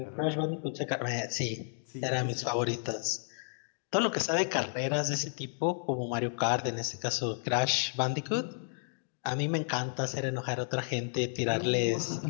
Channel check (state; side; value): silent; right; digital silence